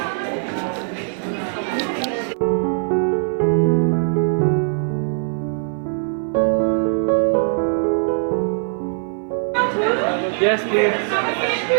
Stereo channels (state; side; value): silent; left; 58 dB below the other